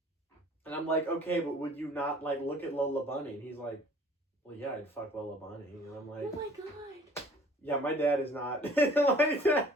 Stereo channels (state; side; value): normal; both; correlation 0.52